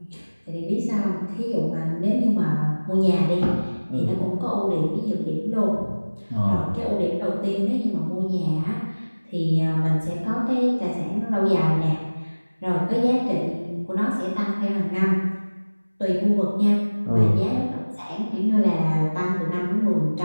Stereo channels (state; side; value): inverted; both; correlation -1.00